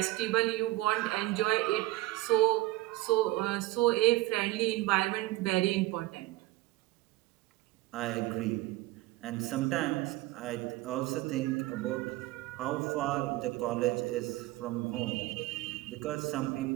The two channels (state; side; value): quieter; left; 17.9 dB